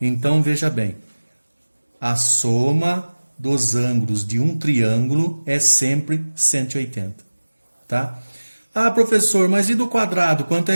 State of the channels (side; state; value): both; inverted; correlation -1.00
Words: veja bem. A soma dos ângulos de um triângulo é sempre 180. Tá? Ah, professor, mas e do quadrado? Quanto